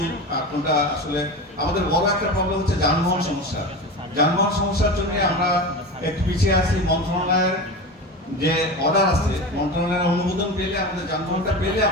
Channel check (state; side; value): normal; both; correlation 0.27